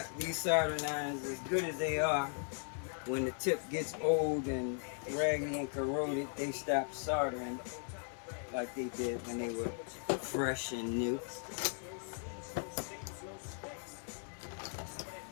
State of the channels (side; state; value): right; silent; 52 dB below the other